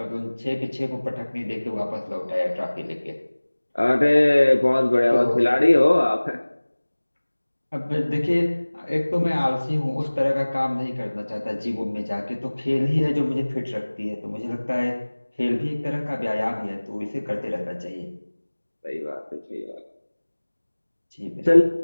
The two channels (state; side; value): inverted; both; correlation -1.00